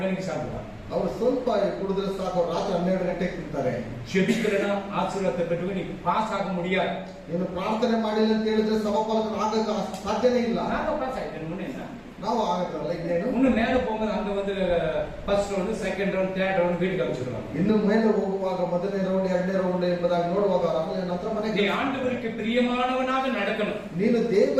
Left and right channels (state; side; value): identical; both; correlation 1.00